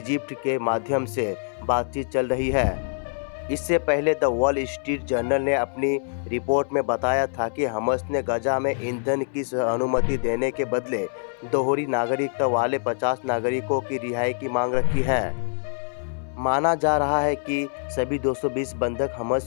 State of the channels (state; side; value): silent; right; 60 dB below the other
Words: के माध्यम से बातचीत चल रही है। इससे पहले द वॉल स्ट्रीट जर्नल ने अपनी रिपोर्ट में बताया था कि हमस ने गजा में ईंधन की अनुमति देने के बदले दोहरी नागरिकता वाले 50 नागरिकों की रिहाई की मांग रखी है। माना जा रहा है कि सभी 220 बंधक